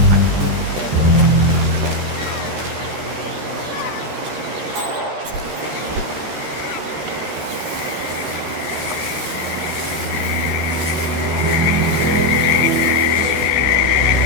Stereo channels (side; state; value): left; late; 13 ms